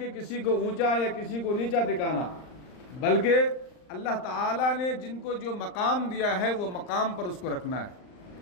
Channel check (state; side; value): late; right; 39 ms